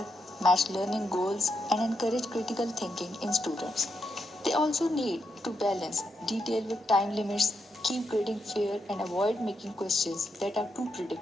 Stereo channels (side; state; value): both; normal; correlation 0.82